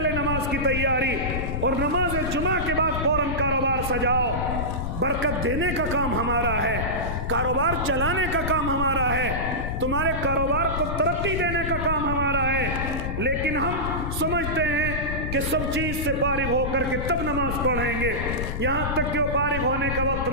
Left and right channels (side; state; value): left; noise; rumble, 3 dB below the sound